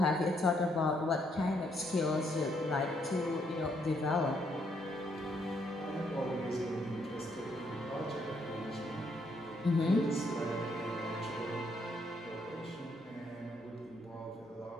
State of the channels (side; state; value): both; normal; correlation 0.73